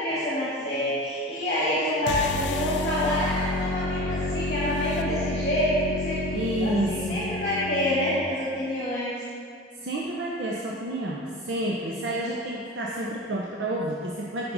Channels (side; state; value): both; normal; correlation 0.32